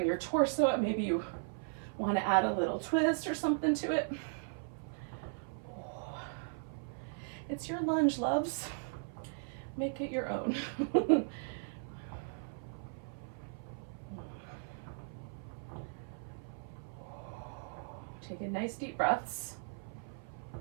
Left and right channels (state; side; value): silent; left; 53 dB below the other